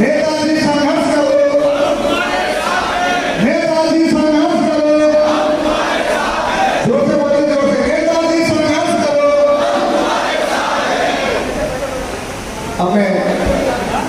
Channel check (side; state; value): both; identical; correlation 1.00